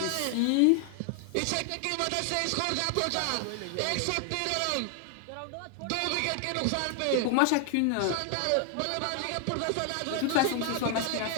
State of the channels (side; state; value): both; different; correlation 0.00